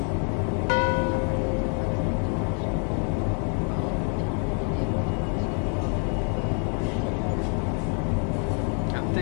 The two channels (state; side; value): quieter; right; 38.5 dB